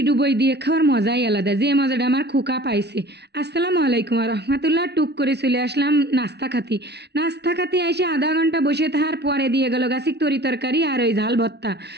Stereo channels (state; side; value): late; left; 0.49 ms